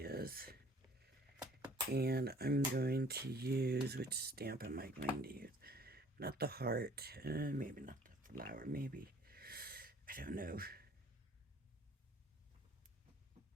And I'm going to use, which stamp am I going to use? Not the heart, maybe not the flower, maybe. I don't know.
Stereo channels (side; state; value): both; normal; correlation 0.55